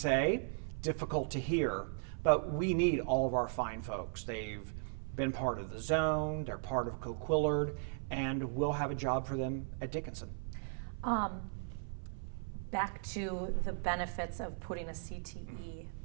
difficult to hear, but we need all of our fine folks. They've been part of the zone, they're part of Coquillard, and we'll have a job for them at Dickinson. Back to the benefits of putting a CTE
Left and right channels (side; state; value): left; silent; 53 dB below the other